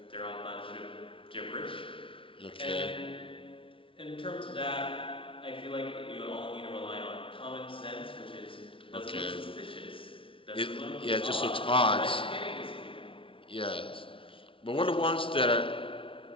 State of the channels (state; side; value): late; right; 0.25 ms